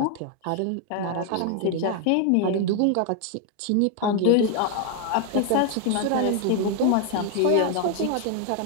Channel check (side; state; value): both; different; correlation 0.00